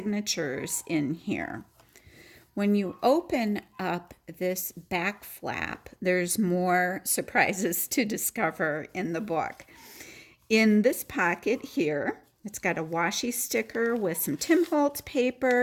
in here. When you open up this back flap, there's more surprises to discover in the book. In this pocket here, it's got a washi sticker with some Tim Holtz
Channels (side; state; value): both; identical; correlation 1.00